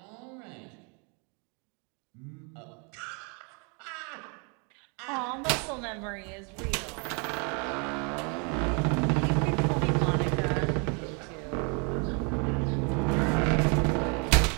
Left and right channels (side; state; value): left; quieter; 34.9 dB